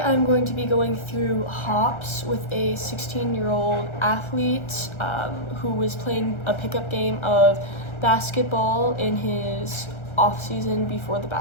I'm going to be going through hops with a 16-year-old athlete who was playing a pickup game of basketball in his off season before the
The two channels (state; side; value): late; right; 1.3 ms